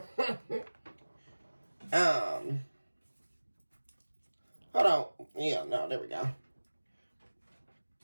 Hold on. Yeah, no, there we go.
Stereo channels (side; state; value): both; inverted; correlation -1.00